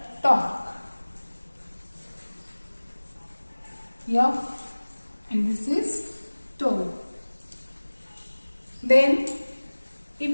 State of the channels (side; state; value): both; inverted; correlation -1.00